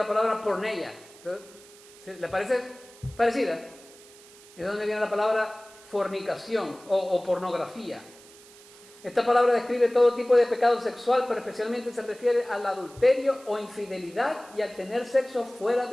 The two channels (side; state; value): right; noise; hiss, 22 dB below the sound